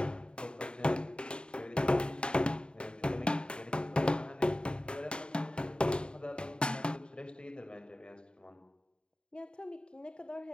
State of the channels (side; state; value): right; late; 0.052 ms